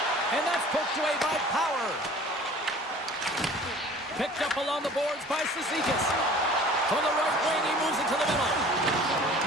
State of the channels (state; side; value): normal; both; correlation 0.47